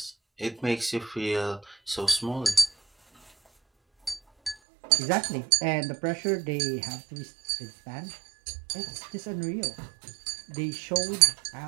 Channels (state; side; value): drops out; left; at 4.5 s